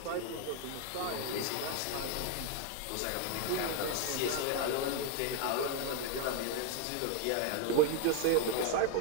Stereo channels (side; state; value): both; different; correlation 0.01